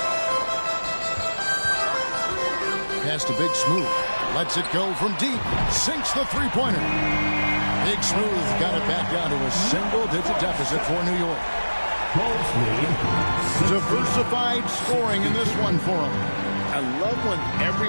Pass to Big Smooth. Lets it go from deep. Sinks the three-pointer. Big Smooth got it back down to a single-digit deficit for New York. Diversified scoring in this one for him. I love when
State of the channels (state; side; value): inverted; both; correlation -1.00